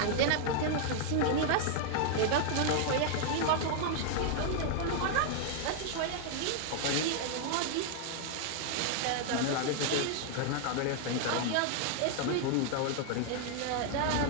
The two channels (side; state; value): both; different; correlation 0.00